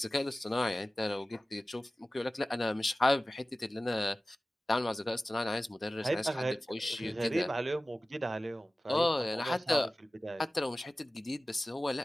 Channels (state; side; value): normal; both; correlation 0.96